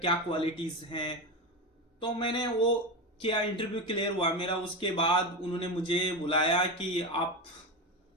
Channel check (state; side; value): normal; both; correlation 0.19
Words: क्वालिटीज हैं। तो मैंने वो किया, इंटरव्यू क्लियर हुआ मेरा। उसके बाद उन्होंने मुझे बुलाया कि आप